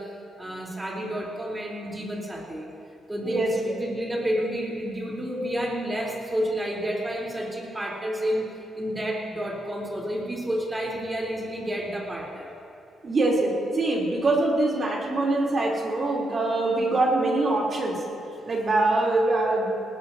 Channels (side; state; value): both; normal; correlation 0.82